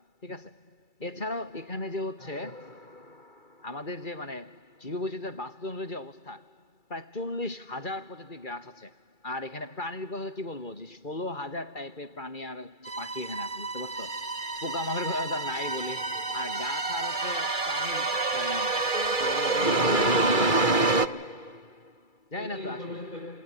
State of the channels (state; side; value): late; right; 2.3 ms